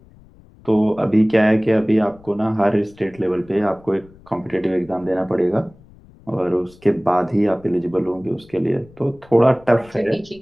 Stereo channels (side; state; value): left; noise; rumble, 25 dB below the sound